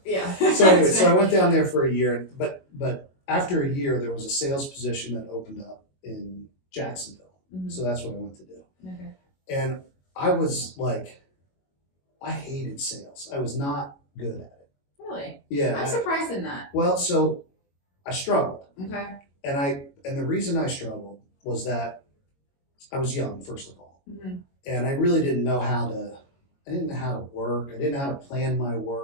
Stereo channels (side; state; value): right; late; 22 ms